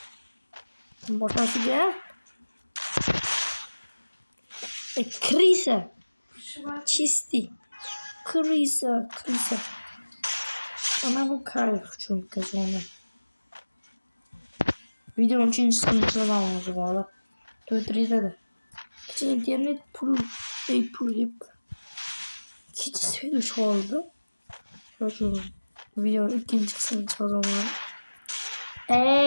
Boşası gel. Krisa. Çisti. Krisa. Ana bu kayıp çünkü sonra. Videonun için sıkıntılı olacak valla. Döndürüyor da. Gece internet pul hep. Gece söylüş oldu. Çocuğum. Videonun ikinci kısmını çalacağım.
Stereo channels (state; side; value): inverted; both; correlation -1.00